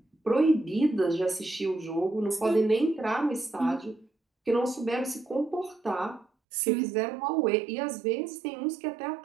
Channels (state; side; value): drops out; left; at 6.2 s